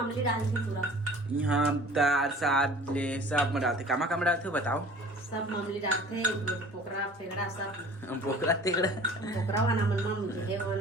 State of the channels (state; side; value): normal; both; correlation 0.46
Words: डालती पूरा यहाँ दाल साग ले सब में डालते कामा डालते हो बताओ। सब अमली डालते पोकरा फेगड़ा सब बोकरा तेगड़ा पोकरा वाला मन है